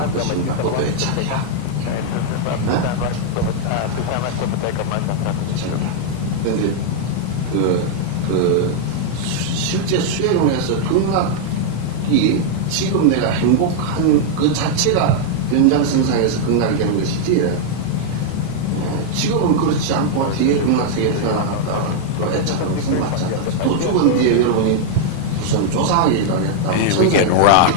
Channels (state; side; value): different; both; correlation 0.00